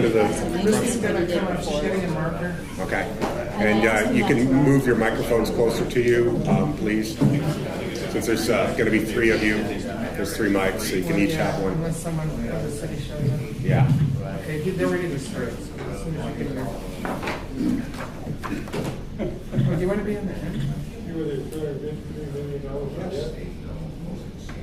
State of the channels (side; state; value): both; identical; correlation 1.00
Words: to the? She's getting a marker. Okay, and you can move your microphones closer to you, please. Since there's going to be three of you, there's three mics, so you can each have one. Unless someone from the city shows up. Yeah. Okay, they're ready to start. So as soon as you get there. Oh, do you want to be on the end? You were there $350 million.